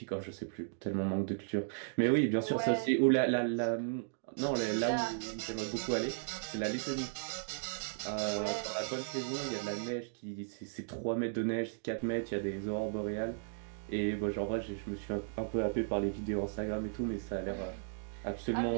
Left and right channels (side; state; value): left; silent; digital silence